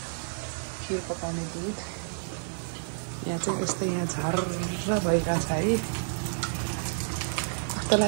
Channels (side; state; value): left; silent; 58 dB below the other